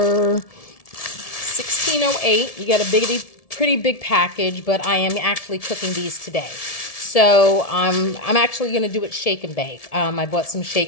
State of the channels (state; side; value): late; right; 1.7 ms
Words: $16.08. You get a pretty big package, but I am actually cooking these today. So I'm actually going to do it shake and bake. I bought some